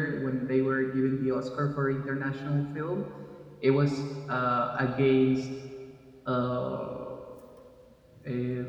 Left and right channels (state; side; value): identical; both; correlation 1.00